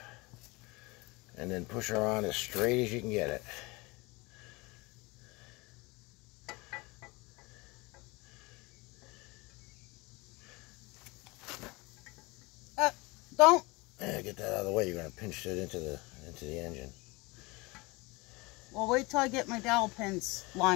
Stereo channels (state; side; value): quieter; right; 24.6 dB